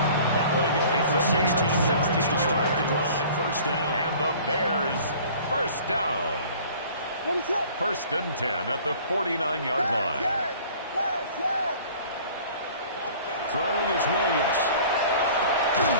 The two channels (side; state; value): both; inverted; correlation -0.48